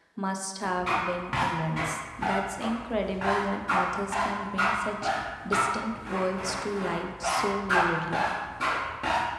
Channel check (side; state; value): both; identical; correlation 1.00